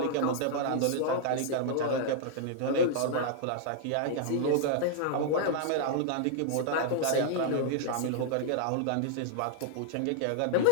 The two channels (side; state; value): both; different; correlation -0.01